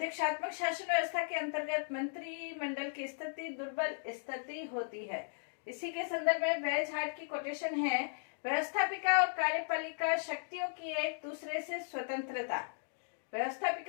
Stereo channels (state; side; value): silent; right; digital silence